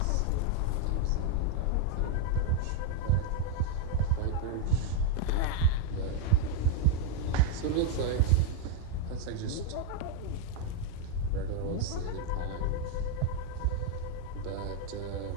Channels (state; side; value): different; both; correlation 0.01